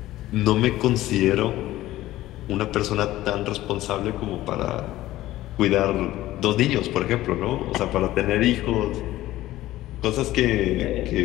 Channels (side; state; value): right; quieter; 15.7 dB